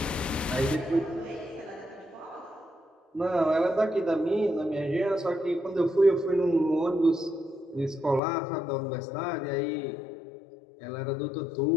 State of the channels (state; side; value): drops out; right; at 8.2 s